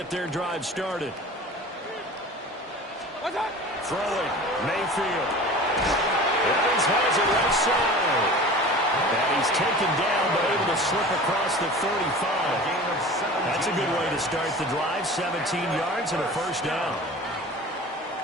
their drive started. Throwing, Mayfield. Evans has it left side. And he's taken down, but able to slip across the 35. That's a good way to start the drive. 17 yards and a first down.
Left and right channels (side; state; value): both; normal; correlation 0.38